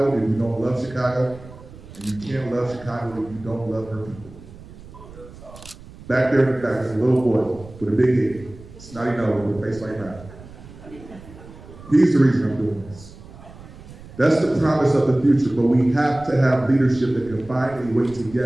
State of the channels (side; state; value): right; noise; rumble, 18 dB below the sound